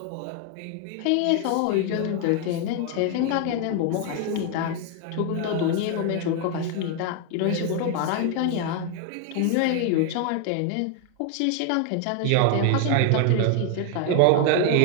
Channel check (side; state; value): both; different; correlation 0.00